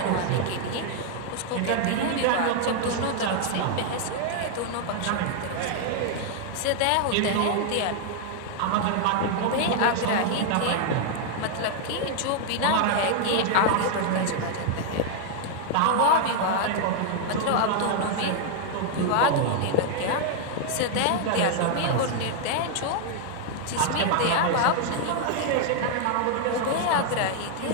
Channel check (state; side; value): different; both; correlation 0.00